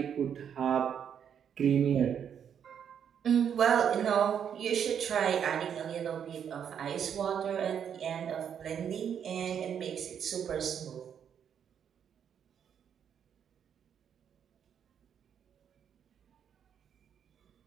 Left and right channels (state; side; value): quieter; left; 8.3 dB